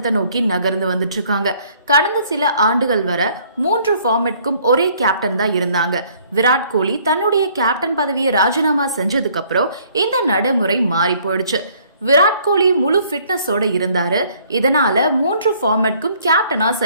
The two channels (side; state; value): both; inverted; correlation -0.61